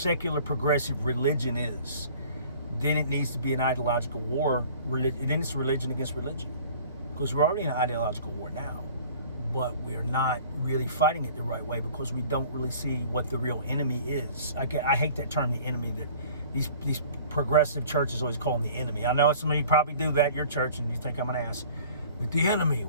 progressive religion is, then it needs to be an ideological war. Then it's religion against religion, because we're already in an ideological war now, but we're not really fighting it the right way because we don't really see what the real enemy is. I hate that term, the enemy, that these progressive churches always call them the enemy. I know some of you probably do that at your church and you think I'm an ass, but the enemy,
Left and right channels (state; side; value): inverted; both; correlation -0.48